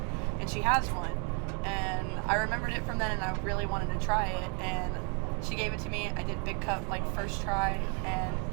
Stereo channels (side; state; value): left; quieter; 37.0 dB